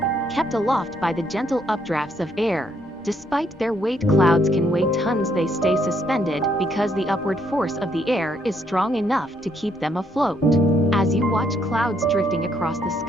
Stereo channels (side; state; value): both; normal; correlation 0.71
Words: kept aloft by the gentle updrafts of air. Despite their weight, clouds can weigh tons. They stay suspended because the upward force of the air is strong enough to keep them afloat. As you watch clouds drifting across the